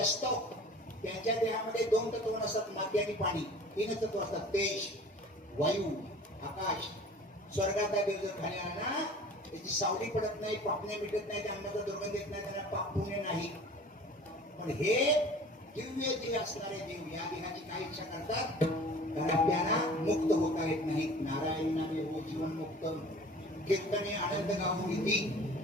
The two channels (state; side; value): normal; both; correlation 0.45